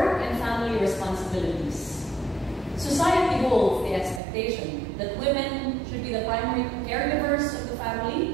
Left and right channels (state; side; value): drops out; left; at 4.2 s